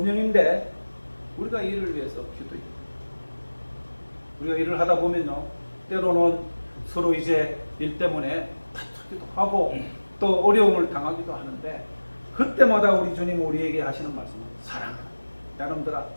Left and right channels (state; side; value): inverted; both; correlation -1.00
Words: 우리가 이를 위해서 기도해요. 우리가 일을 하다 보면요, 때로는 서로 이제 일 때문에 다투기도 하고 또 어려움을 당하기도 하는데 그때마다 우리 주님 우리에게 하시는 말씀은 사랑하라. 여러분들아,